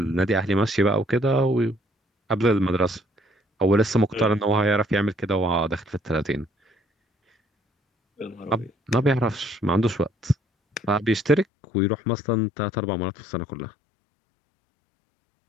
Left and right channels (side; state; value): right; drops out; at 11.5 s